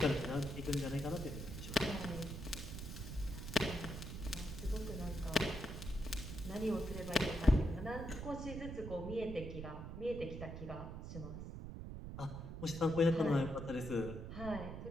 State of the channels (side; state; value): right; noise; rumble, 7 dB below the sound